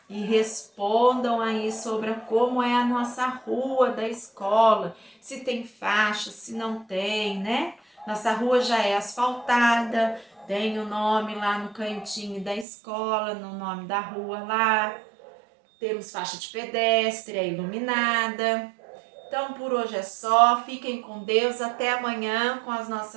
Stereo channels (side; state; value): left; drops out; at 12.7 s